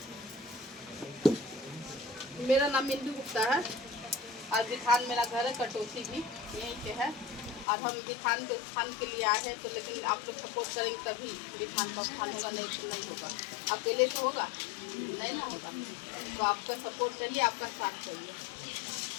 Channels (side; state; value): right; drops out; at 7.7 s